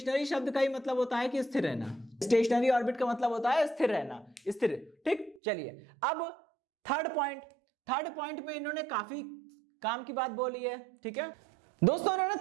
शब्द का ही मतलब होता है कि स्थिर रहना। स्टेशनरी ऑर्बिट का मतलब होता है स्थिर रहना, स्थिर। ठीक, चलिए अब थर्ड पॉइंट में इन्होंने काफी काम की बात बोली है। ठीक है दोस्तों, इन्होंने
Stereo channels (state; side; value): drops out; left; at 5.4 s